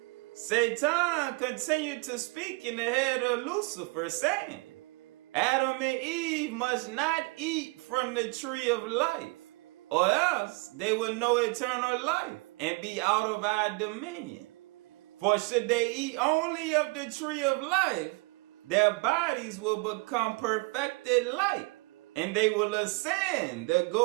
Satan continued to speak in the head of Lucifer, saying, Adam and Eve must not eat from the tree of life, or else they will know eternal life and be out of our dominion. For should they eat only of the tree of life, their bodies will become perfected light, and they will ascend the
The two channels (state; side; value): quieter; left; 27.9 dB